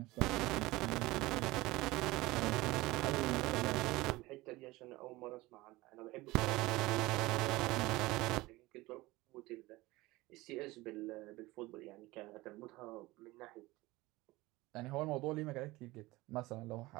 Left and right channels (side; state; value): left; quieter; 20.1 dB